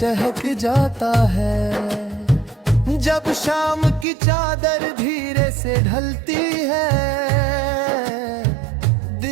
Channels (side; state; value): left; drops out; at 4.0 s